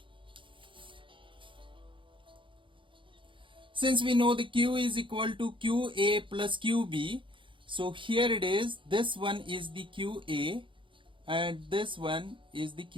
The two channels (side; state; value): left; late; 0.24 ms